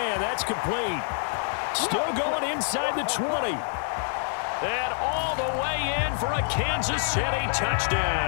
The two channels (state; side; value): silent; right; 60 dB below the other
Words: That's complete. Still going inside the 20. And all the way in for a Kansas City